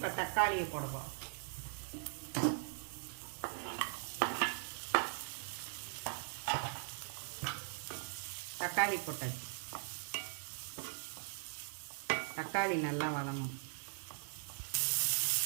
தக்காளியை போடுவோம். தக்காளி போட்டாச்சு. தக்காளி நல்லா வதங்கணும்.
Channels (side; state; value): left; silent; 51 dB below the other